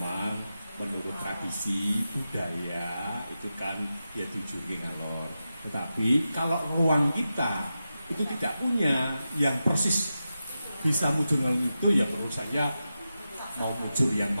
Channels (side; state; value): both; inverted; correlation -0.91